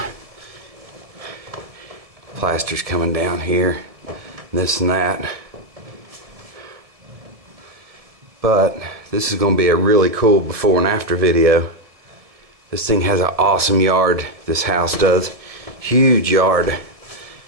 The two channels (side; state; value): left; late; 1.7 ms